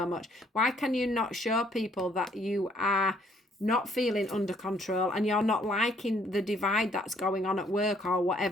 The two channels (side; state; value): both; normal; correlation 0.65